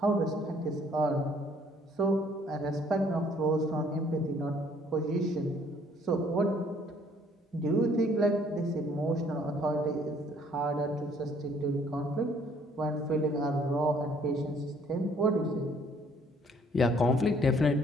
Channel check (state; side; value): normal; both; correlation 0.61